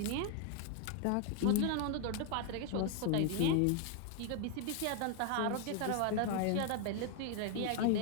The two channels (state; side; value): different; both; correlation 0.01